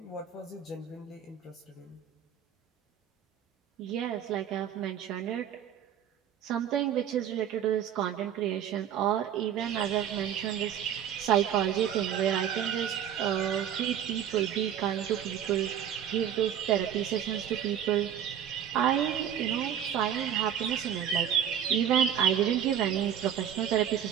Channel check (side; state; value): left; quieter; 9.5 dB